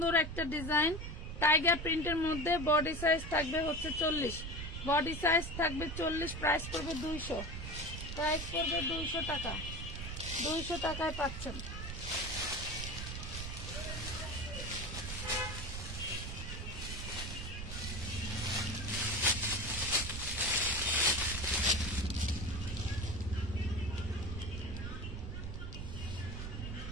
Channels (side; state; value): right; noise; rumble, 6 dB below the sound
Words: একটা ডিজাইন, টাইগার প্রিন্টের মধ্যে। বডি সাইজ থাকবে হচ্ছে 40, বডি সাইজ থাকবে 40, প্রাইস পড়বে 200, প্রাইস পড়বে 200 টাকা। 200 টাকায় পাচ্ছেন।